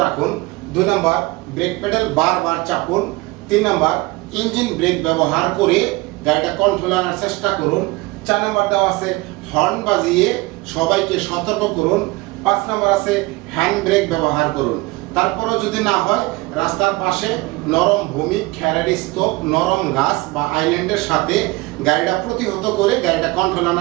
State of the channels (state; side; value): quieter; left; 22.0 dB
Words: রাখুন। 2 নম্বর, ব্রেক পেডাল বারবার চাপুন। 3 নম্বর, ইঞ্জিন ব্রেক ব্যবহার করে গাড়িটা কন্ট্রোল আনার চেষ্টা করুন। 4 নম্বর দেওয়া আছে হর্ন বাজিয়ে সবাইকে সতর্ক করুন। 5 নম্বর আছে হ্যান্ড ব্রেক ব্যবহার করুন। তারপরেও যদি না হয় রাস্তার পাশে নরম ভূমি, খ্যারারি স্তূপ, নরম গাছ বা আইল্যান্ডের সাথে গাড়িটা প্রতিহত করে গাড়িটা কন্ট্রোল